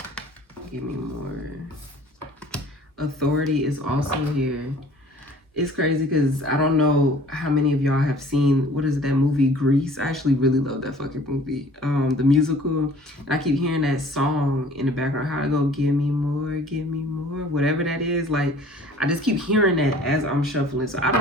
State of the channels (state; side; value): normal; both; correlation 0.50